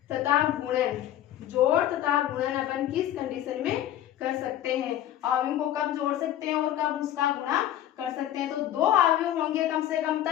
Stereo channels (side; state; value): right; quieter; 12.1 dB